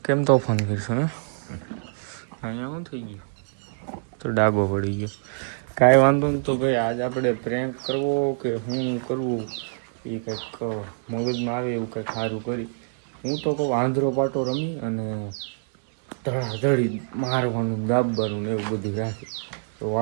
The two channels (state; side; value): silent; left; digital silence